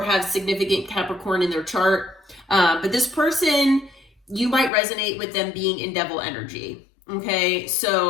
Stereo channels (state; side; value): drops out; right; at 4.7 s